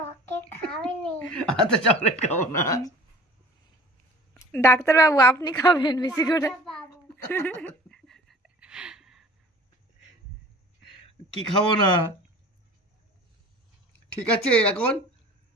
খাবি নি। আচ্ছা চকলেট খাবো না। ডাক্তারবাবু আপনি খাবেন বেশি করে। ডাক্তারবাবু কি খাবো না? ঠিক আছে এখন,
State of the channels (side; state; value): both; normal; correlation 0.45